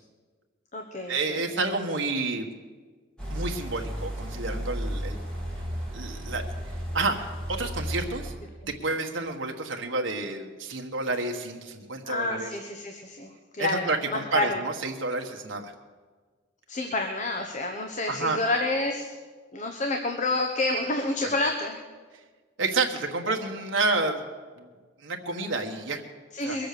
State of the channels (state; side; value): normal; both; correlation 0.03